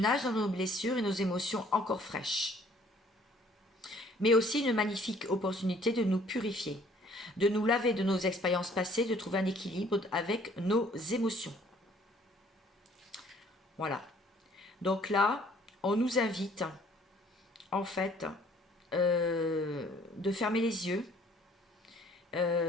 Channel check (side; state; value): both; normal; correlation 0.58